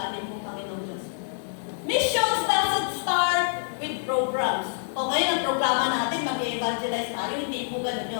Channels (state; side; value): silent; right; digital silence